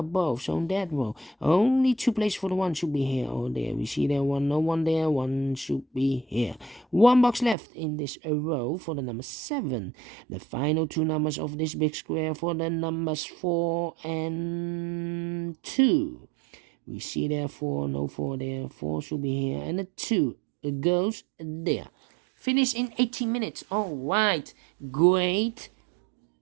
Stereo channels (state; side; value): drops out; left; at 7.6 s